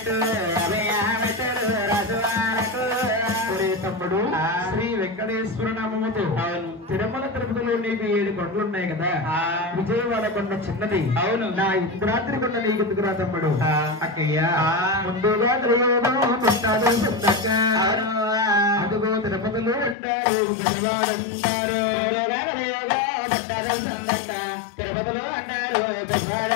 తమ్ముడు శ్రీ వెంకటేశ్వర నామముతో తిరుమల తిరుపతిలో నీకు 7 కొండలు ఉన్నాయి కదా విజయవాడ కొండ చిన్నది అవును నా ఇంద్రాద్రి కొండ నీకు ఎందుకురా తమ్ముడు అక్కయ్య ముందుగా అదుగో తిరుపతిలో అంటారు విజయవాడ అంటారు తిరుపతిలో అంటారు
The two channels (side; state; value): right; drops out; at 20.0 s